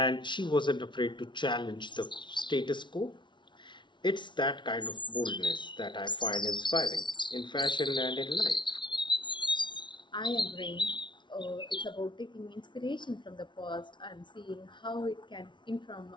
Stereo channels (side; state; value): right; late; 0.23 ms